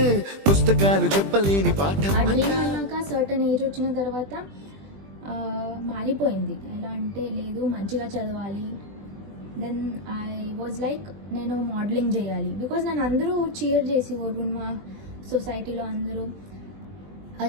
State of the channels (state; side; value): late; left; 20 ms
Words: పుస్తకాలు చెప్పలేని పాఠం. ఆ డ్రీమ్ అన్నాక సర్టన్ ఏజ్ వచ్చిన తర్వాత మారిపోయింది. ఎలా అంటే లేదు మంచిగా చదవాలి. దెన్ ఐ వాజ్ లైక్ నేను మోడలింగ్ చేయాలి. బికాజ్ నన్ను అందరూ చీర్ చేసేవారు మా సొసైటీలో అందరూ,